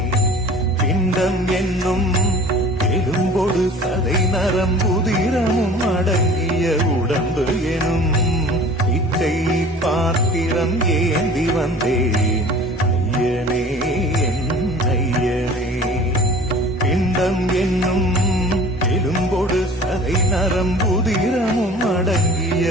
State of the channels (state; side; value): normal; both; correlation 0.45